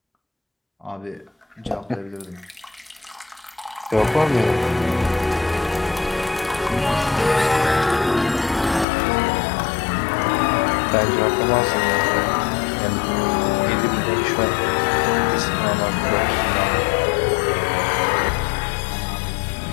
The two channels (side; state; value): right; drops out; at 8.8 s